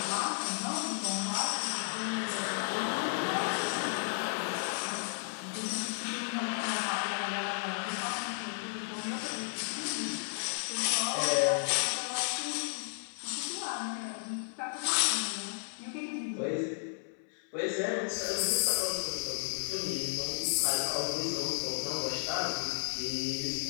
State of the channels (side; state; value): right; silent; 55 dB below the other